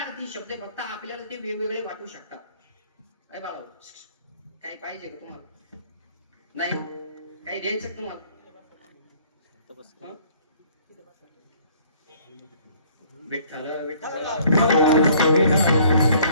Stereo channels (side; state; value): both; inverted; correlation -0.58